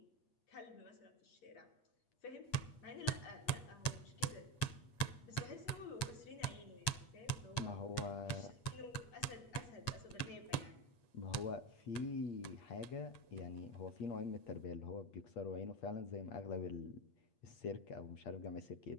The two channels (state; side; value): late; right; 8.3 ms